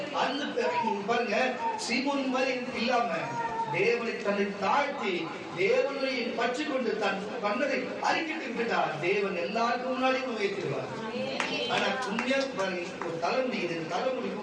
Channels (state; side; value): identical; both; correlation 1.00